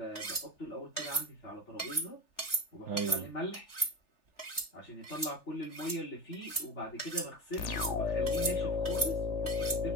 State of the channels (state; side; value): late; right; 3.4 ms